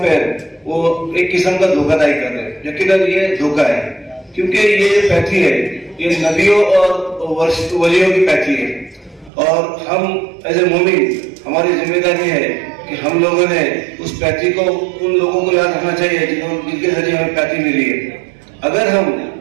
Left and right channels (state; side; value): drops out; left; at 9.3 s